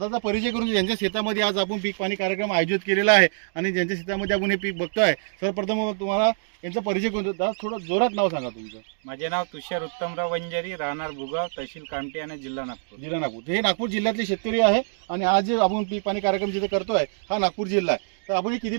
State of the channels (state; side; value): silent; left; digital silence